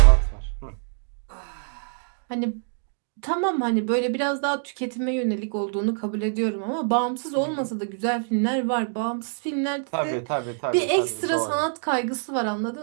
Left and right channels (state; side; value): silent; left; digital silence